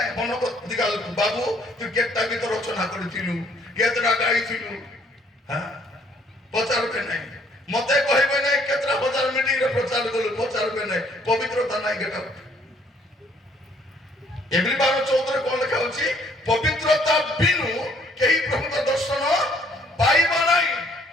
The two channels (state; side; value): normal; both; correlation 0.64